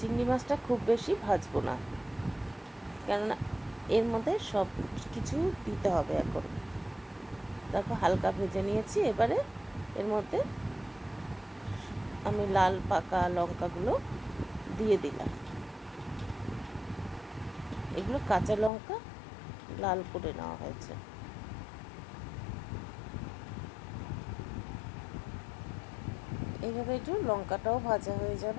মাছটা খুব বেশি ভাজবো না, কেননা এর মধ্যে সব কিছু দিতে হবে এখন। দেখো হালকা ভেজে নিয়েছি। এবারে এর মধ্যে আমি লাল পাকা লঙ্কাগুলো দিয়ে দিলাম। এগুলো কাঁচা লঙ্কা লাল করে নেওয়া হয়েছে। এইভাবে একটু লঙ্কাটাও ভাজা হয়ে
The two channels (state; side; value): drops out; right; at 18.7 s